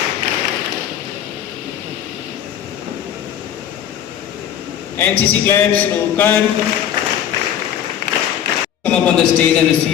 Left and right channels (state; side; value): quieter; right; 9.9 dB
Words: NCC club शुरू कर। Come up on the stage and